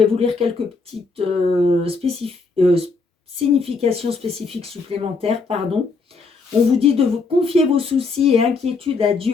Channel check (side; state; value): right; quieter; 4.2 dB